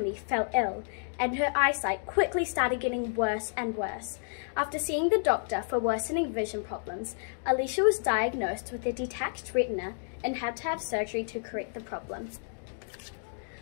fell ill, and her eyesight quickly started getting worse and worse. After seeing the doctor for worsening vision problems, Alicia was diagnosed with a detached retina and had to have surgery to correct the problem.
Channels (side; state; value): right; silent; digital silence